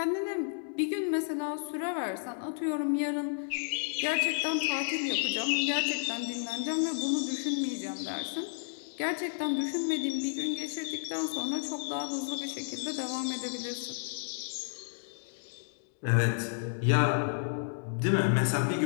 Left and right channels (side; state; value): right; silent; digital silence